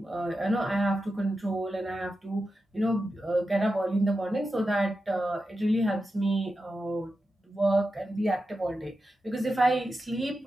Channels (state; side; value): normal; both; correlation 0.90